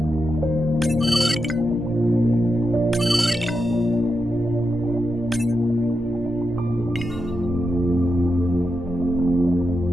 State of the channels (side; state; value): both; normal; correlation 0.87